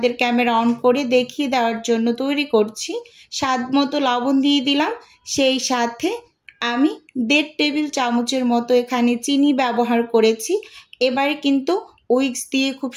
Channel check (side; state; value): both; identical; correlation 1.00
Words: ক্যামেরা অন করে দেখিয়ে দেওয়ার জন্য তৈরি করছি। স্বাদ মতো লবণ দিয়ে দিলাম, সেই সাথে আমি 1.5 টেবিল চামচের মতো এখানে চিনি ব্যবহার করেছি। এবারে কিন্তু উইক্স দিয়ে খুব